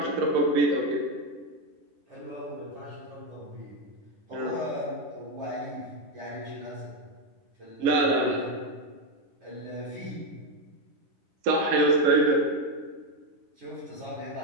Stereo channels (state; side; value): late; left; 11 ms